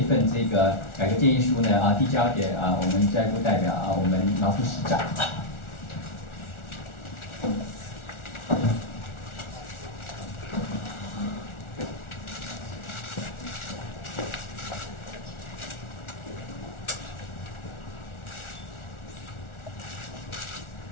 份这个改革建议书呢递交给我们教育部代表我们劳副市长。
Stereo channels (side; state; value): right; late; 1.4 ms